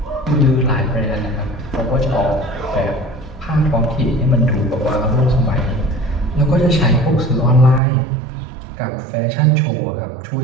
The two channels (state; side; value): drops out; left; at 7.8 s